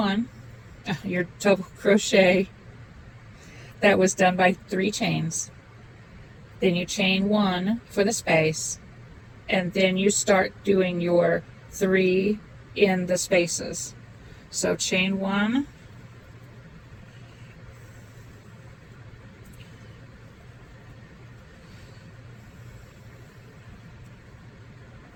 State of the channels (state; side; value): identical; both; correlation 1.00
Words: your double crochet that was done by 3 chains. Then you chain 1 for the space, and then you start doing your 3 in the spaces. So chain 1,